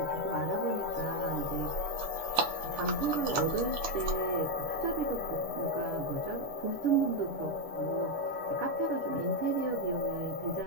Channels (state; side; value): late; left; 6.8 ms